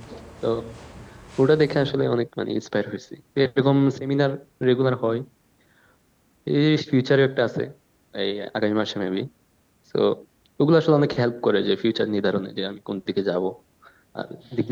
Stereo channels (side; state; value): both; identical; correlation 1.00